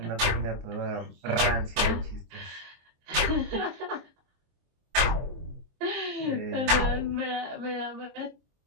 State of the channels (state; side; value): late; left; 23 ms